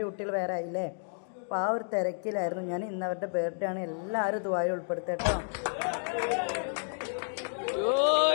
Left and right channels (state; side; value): silent; right; digital silence